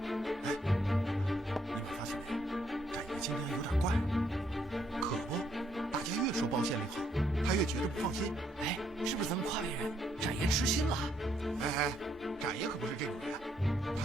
今天有点怪，可不，大家越说包县令好，他越觉得不放心。哎，是不是咱们夸别人，展爷痴心了？哎，展爷可不是这种人，他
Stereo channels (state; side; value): normal; both; correlation 0.72